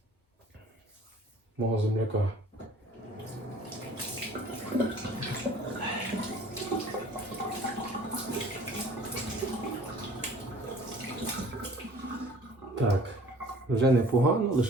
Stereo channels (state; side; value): normal; both; correlation 0.50